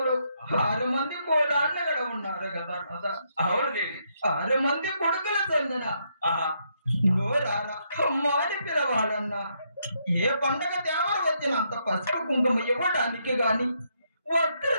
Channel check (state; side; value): inverted; both; correlation -0.76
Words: 6 మంది కోడాన్న గడ ఉన్నారు కదా నాదా. అవును దేవి. 6 మంది కొడుకుల చెందిన నోరారా అమ్మాని పిలవాలన్నా ఏ పండగ దేవర వచ్చినంత పసుపు కుంకుమ ఇవ్వడానికి గాని, వస్త్ర